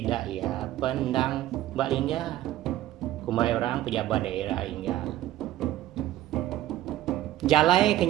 ya pendang Mbak Lingga. Kumai orang pejabat daerah Lingga. Jalai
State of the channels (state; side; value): quieter; left; 14.2 dB